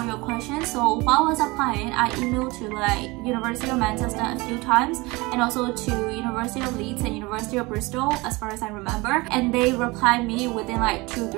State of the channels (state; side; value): quieter; left; 23.5 dB